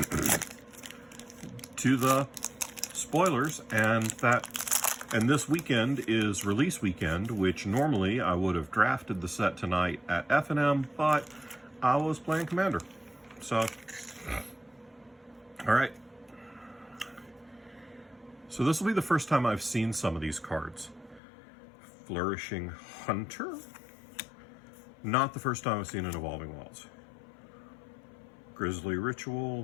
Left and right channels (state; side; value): drops out; right; at 21.2 s